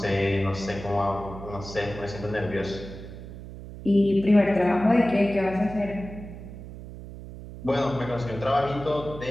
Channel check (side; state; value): right; noise; hum, 13 dB below the sound